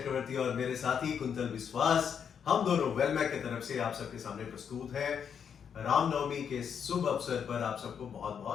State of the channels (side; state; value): right; quieter; 7.5 dB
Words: और मेरे साथी कुंतल विश्वास, हम दोनों वेलमैक की तरफ से आप सबके सामने प्रस्तुत हैं। रामनवमी के शुभ अवसर पर आप सबको बहुत